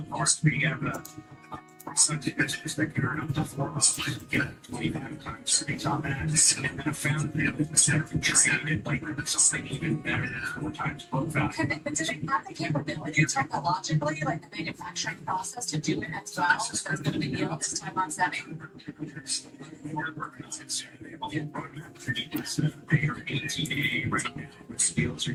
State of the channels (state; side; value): identical; both; correlation 1.00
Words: parts. We have a business that can earn up to 4 months, get 25 times earnings on that, and then I found that we traded like something even better than 4 times book value. But do they have the capability technologically, like the manufacturing process, to do it as well? If there's going to be yield this time on semi. We're working on it soon. They are 18A right now. The skills are